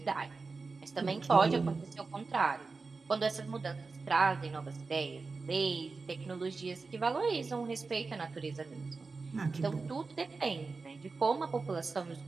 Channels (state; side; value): quieter; left; 4.2 dB